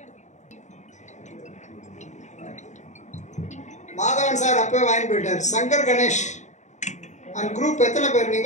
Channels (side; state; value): right; late; 0.34 ms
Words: மாதவன் சார் அப்பவே வாங்கி போயிட்டார். சங்கர் கணேஷ் அந்த குரூப் எத்தனை பேர்?